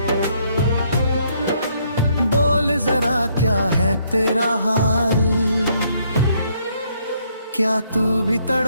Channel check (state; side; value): inverted; both; correlation -0.70